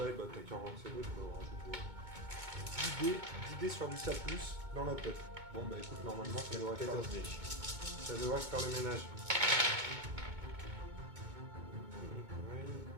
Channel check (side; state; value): left; late; 2.2 ms